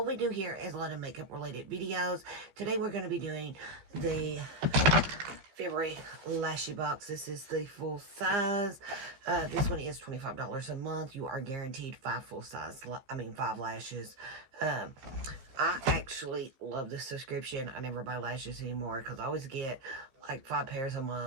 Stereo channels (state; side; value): late; left; 15 ms